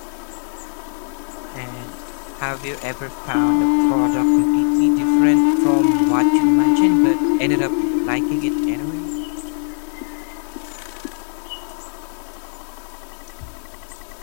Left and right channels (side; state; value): right; silent; digital silence